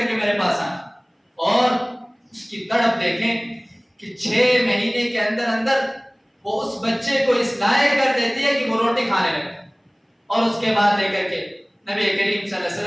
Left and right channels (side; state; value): both; identical; correlation 1.00